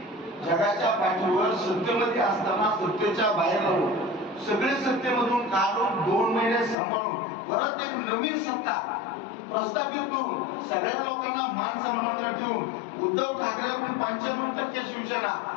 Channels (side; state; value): right; drops out; at 6.8 s